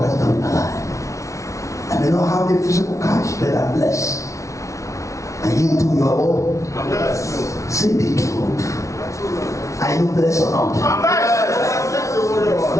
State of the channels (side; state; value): right; late; 0.15 ms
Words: has done in my life. I may not have the physical cash, but I'm blessed. And you do your own. Say the truth. Are you blessed or not?